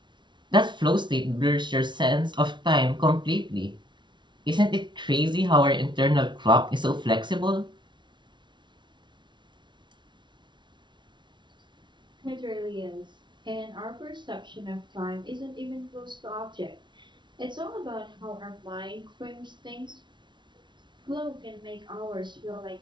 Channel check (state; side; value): late; left; 0.23 ms